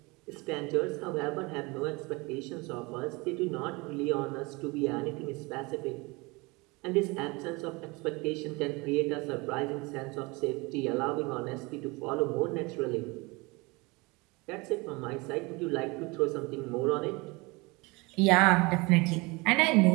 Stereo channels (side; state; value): left; quieter; 25.6 dB